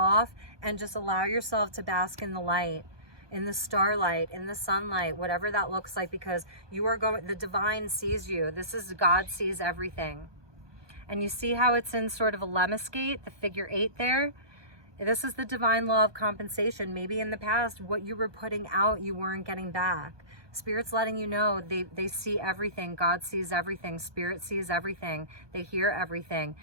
and just allow yourself to bask in the light, in the starlight, in the sunlight, whatever that looks like, because you are going, the divine sees you. This is God sees everything. And you see how it's in sort of a lemniscate, the figure 8 there? This is the divine law of compensation. Maybe in the past, what you were putting out, you weren't getting back. Spirit's letting you know they see everything. God sees everything. Spirit sees everything. They hear everything.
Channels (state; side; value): late; left; 1.2 ms